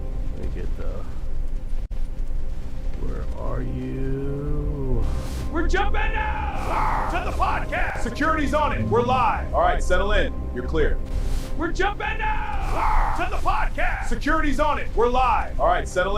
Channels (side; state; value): both; identical; correlation 1.00